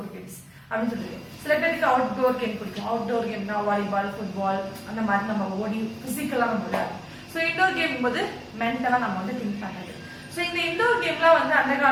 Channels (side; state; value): both; identical; correlation 1.00